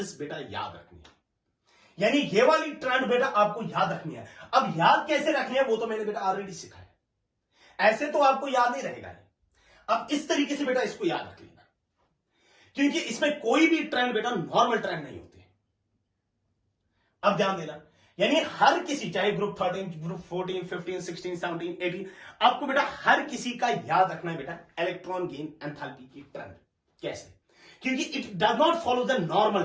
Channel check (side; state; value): both; identical; correlation 1.00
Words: बेटा याद रखनी है। यानी ये वाली ट्रेंड बेटा आपको याद रखनी है। अब याद कैसे रखनी है वो तो मैंने बेटा ऑलरेडी सिखाया, ऐसे तो आपको याद नहीं रहेगा। अब इस तरीके से बेटा इसको याद रख लेना, क्योंकि इसमें कोई भी ट्रेंड बेटा नॉर्मल ट्रेंड नहीं होते। अब ध्यान देना, यानी हर किसी, चाहे ग्रुप 13, ग्रुप 14, 15, 16, 17, 18, आपको बेटा हर किसी का याद रखना है बेटा इलेक्ट्रॉन गेन एंथैल्पी की ट्रेंड। कैसे, क्योंकि it does not follow the normal